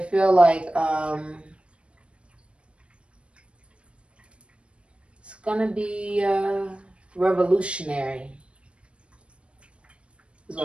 like it's going to be revolutionary, is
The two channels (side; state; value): left; late; 0.059 ms